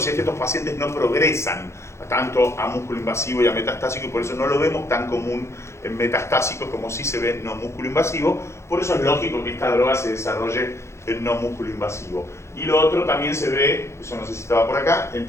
si es que estos pacientes no progresan tanto a músculo invasivo y a metastásico, y por eso no lo vemos tan común en metastásicos como sí se ve en no músculo invasivo. Por eso es lógico que esta droga se desarrolle en no músculo invasivo. Y lo otro también se ve, eso no sé si estaba por acá, en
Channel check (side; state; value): right; late; 0.13 ms